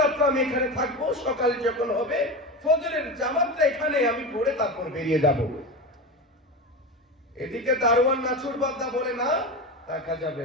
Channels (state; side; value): normal; both; correlation 0.23